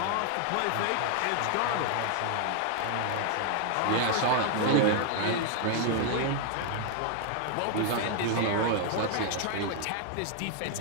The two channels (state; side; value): different; both; correlation 0.00